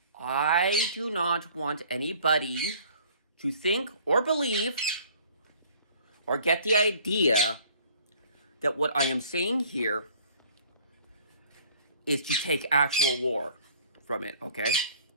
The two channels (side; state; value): both; inverted; correlation -0.53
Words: I do not want anybody to think or believe or get the idea that what I am saying here is to take actual war from it, okay?